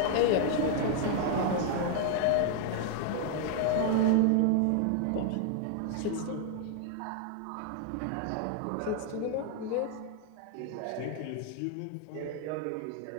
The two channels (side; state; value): both; different; correlation 0.00